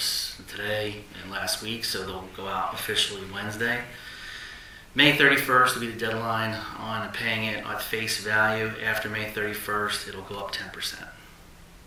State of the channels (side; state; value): both; identical; correlation 1.00